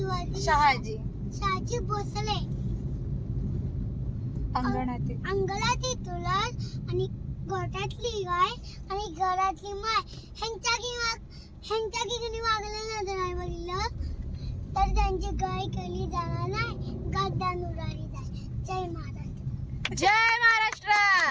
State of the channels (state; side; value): identical; both; correlation 1.00